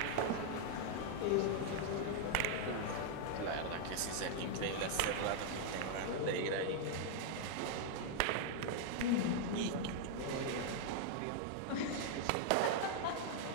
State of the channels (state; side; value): different; both; correlation 0.00